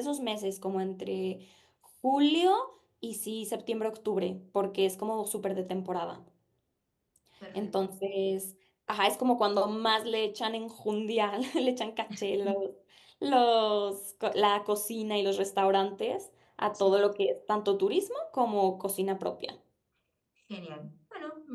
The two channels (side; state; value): both; identical; correlation 1.00